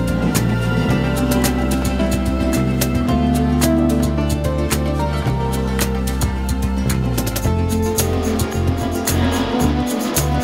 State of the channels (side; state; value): both; identical; correlation 1.00